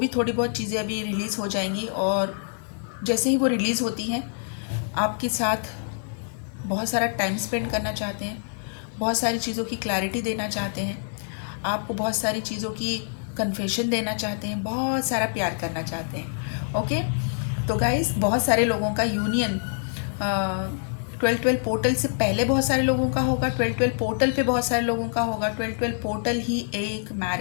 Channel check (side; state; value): right; silent; digital silence